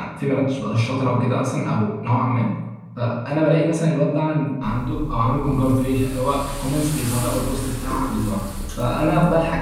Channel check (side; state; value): both; identical; correlation 1.00